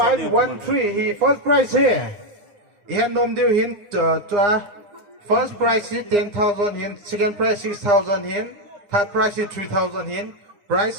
He first prize here. He nom deal hin to first prize is 10,000 hin, second prize 6,000 hin, third prize is 3,000 hin, price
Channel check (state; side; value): late; left; 9.8 ms